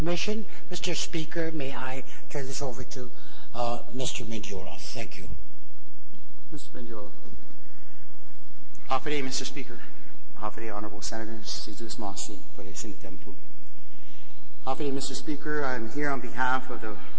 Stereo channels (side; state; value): both; identical; correlation 1.00